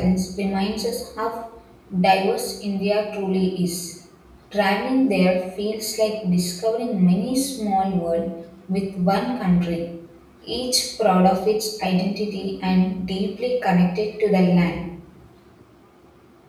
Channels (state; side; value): identical; both; correlation 1.00